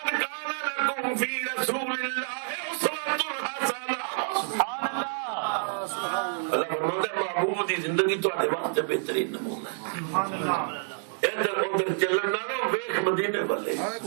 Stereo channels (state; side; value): silent; left; digital silence